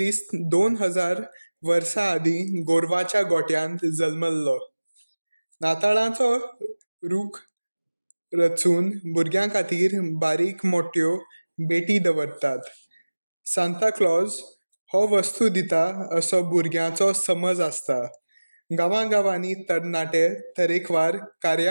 2000 वर्सां आदीं गोरवाच्या गोठ्यांत जल्मल्लो. नाताळाचो रूख रचून भुरग्यां खातीर बारीक मोठ्यो भेटी दवरतात. सांता क्लॉज हो वस्तू दिता असो भुरग्यांचो समज आसता. गांवांनी तरणाटे तरेकवार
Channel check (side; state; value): both; inverted; correlation -1.00